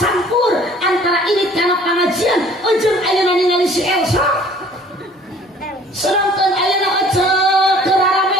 antara irit kana pangajian jeung ayeuna ningali si Elsa. Sedangkan ayeuna eceuk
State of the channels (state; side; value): normal; both; correlation 0.53